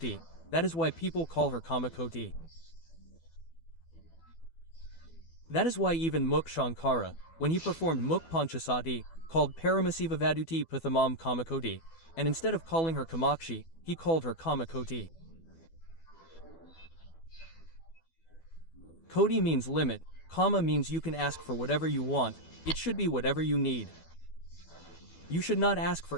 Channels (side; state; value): right; late; 12 ms